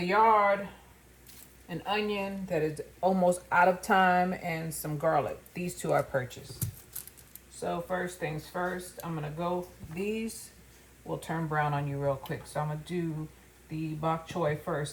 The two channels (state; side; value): identical; both; correlation 1.00